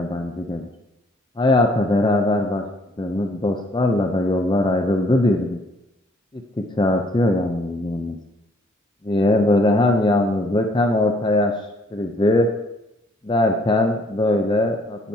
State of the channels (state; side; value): normal; both; correlation 0.63